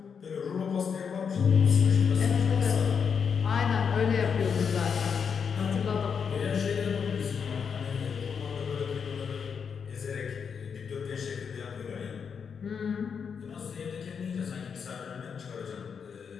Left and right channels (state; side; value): quieter; right; 6.5 dB